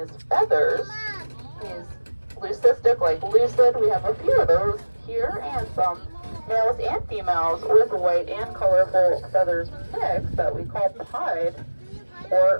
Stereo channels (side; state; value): both; inverted; correlation -1.00